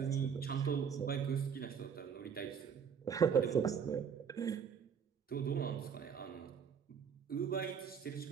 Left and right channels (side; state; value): left; quieter; 7.1 dB